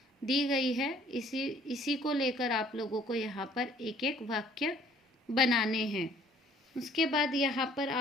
दी गई है, इसी को लेकर आप लोगों को यहाँ पर एक एक वाक्य बनाने हैं। उसके बाद यहाँ पर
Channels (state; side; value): normal; both; correlation 0.57